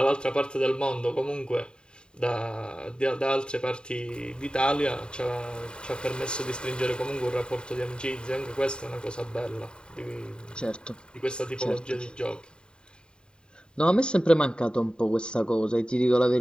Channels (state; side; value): late; right; 0.050 ms